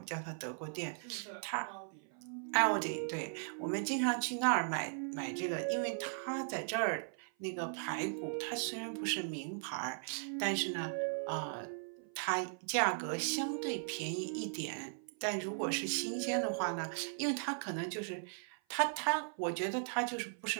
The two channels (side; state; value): left; silent; 53 dB below the other